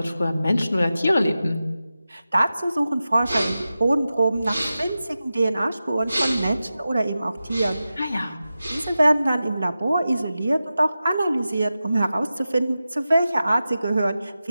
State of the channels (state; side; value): inverted; both; correlation -0.93